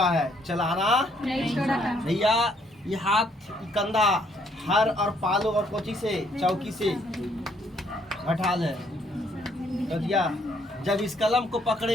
है, चलाना नहीं छोड़ा भैया। ये हाथ कंधा हर और पालो और कोची से चौकी से हटा ले तो दिया। जब इस कलम को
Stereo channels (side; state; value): both; normal; correlation 0.68